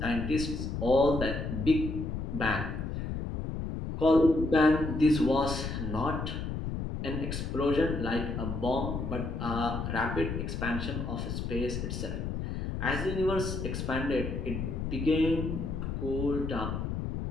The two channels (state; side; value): noise; left; rumble, 3 dB below the sound